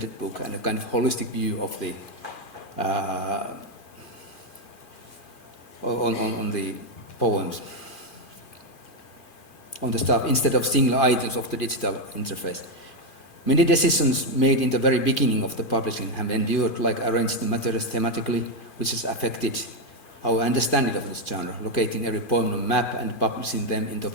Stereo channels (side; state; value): right; late; 2.5 ms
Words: book and a kind of holistic view of the on the poems, on the stuff, instead of single items of the digital interface. Many decisions made in the very beginning of the publishing have endured, like arranging the materials thematically, which has affected our understanding of this genre, locating every poem on a map and publishing them in